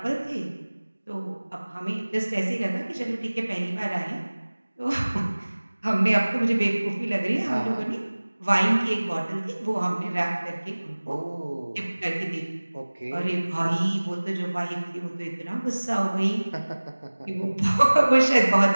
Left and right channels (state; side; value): inverted; both; correlation -1.00